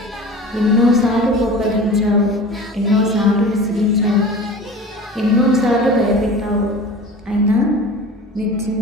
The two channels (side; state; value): both; normal; correlation 0.38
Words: ఎన్నోసార్లు కోపగించావు, ఎన్నోసార్లు విసిగించావు, ఎన్నోసార్లు భయపెట్టావు. అయినా నీ